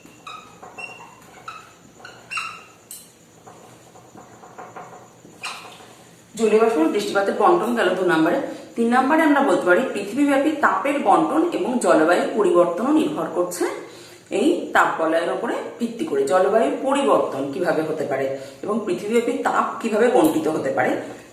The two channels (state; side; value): identical; both; correlation 1.00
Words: জলীয় বাষ্প বৃষ্টিপাতের বন্টন গেল 2 নম্বরে। 3 নম্বরে আমরা বলতে পারি পৃথিবীব্যাপী তাপের বন্টন এবং জলবায়ু পরিবর্তনও নির্ভর করছে এই তাপ বলয়ের উপরে ভিত্তি করে। জলবায়ু পরিবর্তন কিভাবে হতে পারে এবং পৃথিবীব্যাপী তাপ কিভাবে বন্টিত হতে পারে